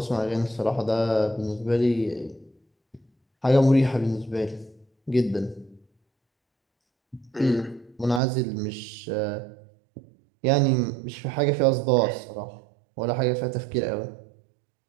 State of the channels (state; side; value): drops out; left; at 8.2 s